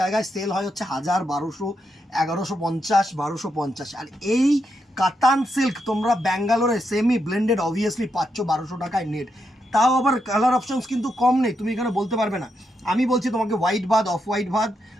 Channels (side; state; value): both; normal; correlation 0.82